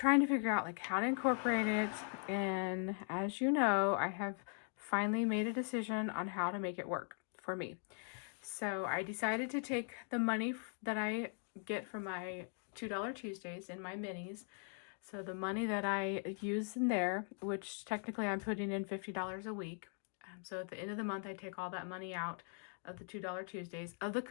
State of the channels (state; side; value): silent; right; 51 dB below the other